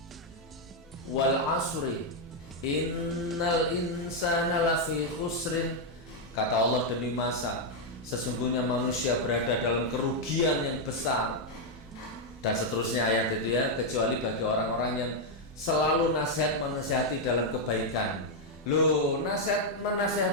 Wal asri innal insana lafi khusrin, kata Allah demi masa, sesungguhnya manusia berada dalam kerugian yang besar. Dan seterusnya ayat itu ya, kecuali bagi orang-orang yang selalu menasihati dalam kebaikan. Loh,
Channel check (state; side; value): normal; both; correlation 0.00